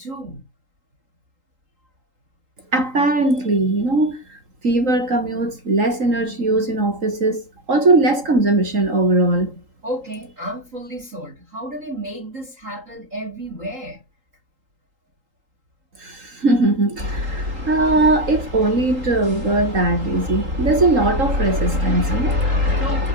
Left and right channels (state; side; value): late; left; 3.8 ms